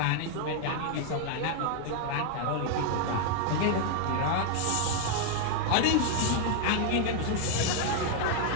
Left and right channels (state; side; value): different; both; correlation 0.00